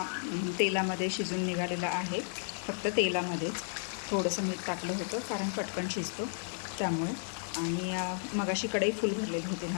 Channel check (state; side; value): silent; right; digital silence